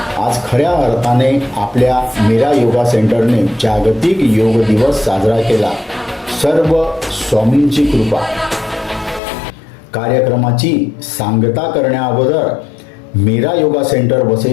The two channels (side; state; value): right; drops out; at 9.2 s